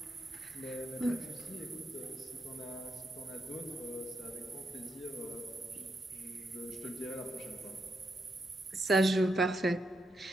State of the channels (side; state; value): both; normal; correlation 0.82